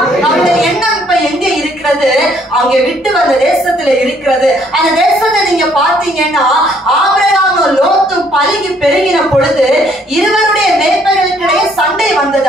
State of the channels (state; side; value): normal; both; correlation 0.65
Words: அவருடைய எண்ணம் இப்ப எங்க இருக்கிறது? அவங்க விட்டு வந்த தேசத்துல இருக்கிறது. அந்த தேசத்தை நீங்க பாத்தீங்கன்னா ஆபிரகாமும் லோத்தும் பலுகி பெருகின பொழுது இருவருடைய மேய்ப்பர்களுக்கிடையே சண்டை வந்தது.